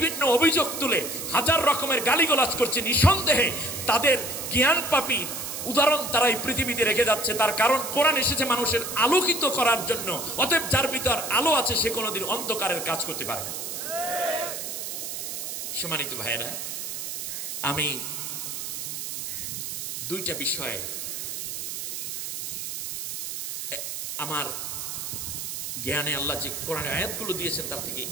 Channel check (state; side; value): noise; right; hiss, 5 dB below the sound